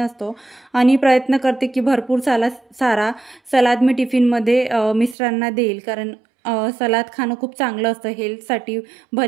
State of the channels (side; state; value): left; drops out; at 5.2 s